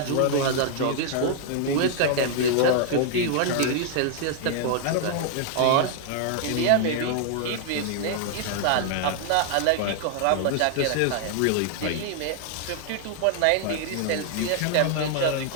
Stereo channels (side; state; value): both; different; correlation 0.00